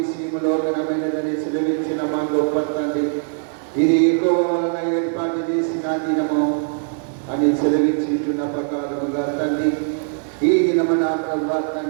ఘనమైనదని సెలవించిన మా గొప్ప తండ్రి, ఇది ఎక్కువ వలన ఏర్పాటు చేసిన దినము అని సెలవించున్న ప్రకారముగా తండ్రి, ఈ దినము నా ప్రభు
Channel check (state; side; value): silent; left; 65 dB below the other